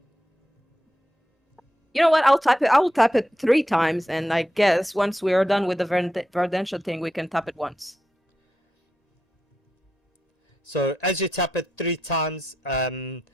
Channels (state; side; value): normal; both; correlation 0.86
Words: You know what? I'll type it. I will tap it 3 times, and I guess once we are done with the Verdential thing, we can tap it once. So as you tap it 3 times,